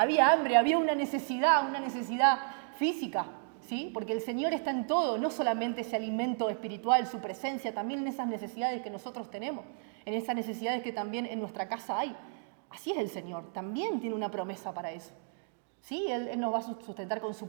hambre, había una necesidad física, ¿sí? Porque el Señor está en todo, no solamente ese alimento espiritual, su presencia, también en esas necesidades que nosotros tenemos, en esas necesidades que también en nuestra casa hay. Así es el Señor, también tiene una promesa para eso. Sí, Él nos va a sustentar con su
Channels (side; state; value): left; silent; 56 dB below the other